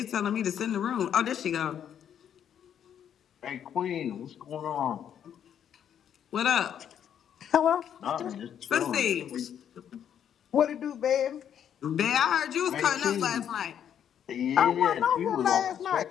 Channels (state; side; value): quieter; right; 9.2 dB